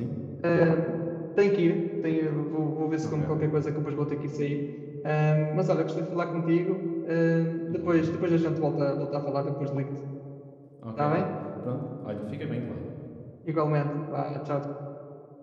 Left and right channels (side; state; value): both; identical; correlation 1.00